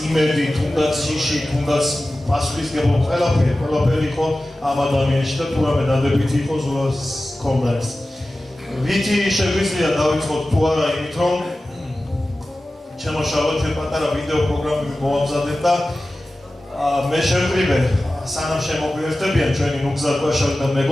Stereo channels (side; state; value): both; normal; correlation 0.95